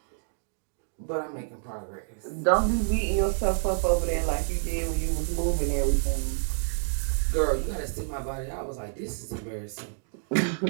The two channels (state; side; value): silent; left; digital silence